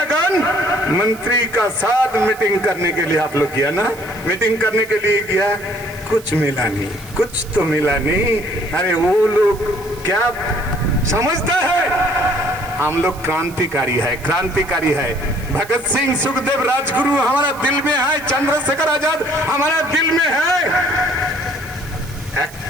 मंत्री का साथ मीटिंग करने के लिए आप लोग किया ना, मीटिंग करने के लिए किया, कुछ मिला नहीं, कुछ तो मिला नहीं। अरे वो लोग क्या समझता है, हम लोग क्रांतिकारी है, क्रांतिकारी है। भगत सिंह, सुखदेव, राजगुरु हमारा दिल में है, चंद्रशेखर आजाद हमारा दिल में है।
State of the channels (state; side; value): noise; right; hiss, 20 dB below the sound